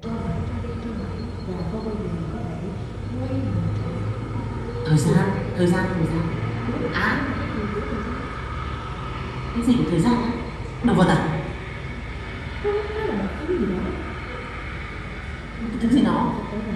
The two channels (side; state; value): both; identical; correlation 1.00